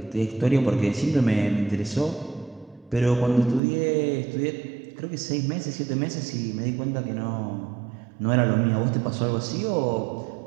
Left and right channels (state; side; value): drops out; left; at 3.6 s